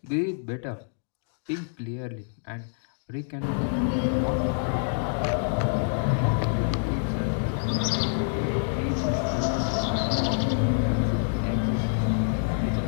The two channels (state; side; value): silent; right; digital silence